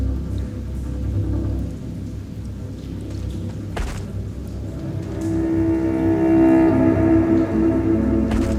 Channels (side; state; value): both; identical; correlation 1.00